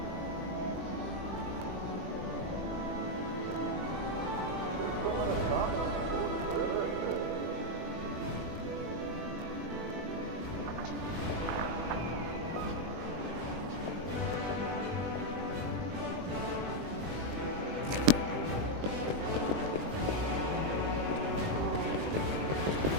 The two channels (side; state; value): left; late; 20 ms